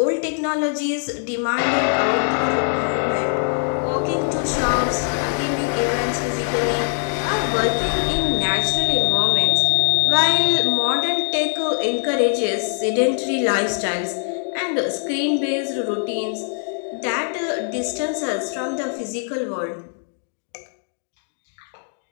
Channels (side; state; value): right; silent; 64 dB below the other